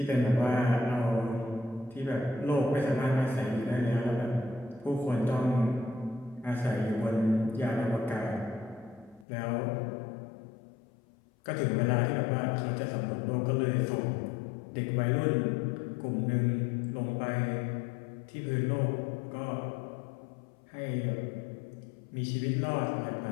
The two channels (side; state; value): right; drops out; at 9.2 s